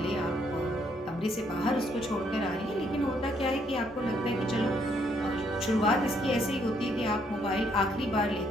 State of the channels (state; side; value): normal; both; correlation 0.71